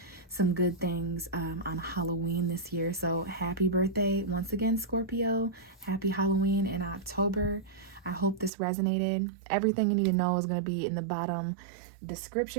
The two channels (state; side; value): drops out; left; at 8.5 s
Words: some good things on Halloween this year. So happy birthday once again, Scorpio. Happy Halloween in October. I hope this resonated. Everything you need to know is going to be in the bottom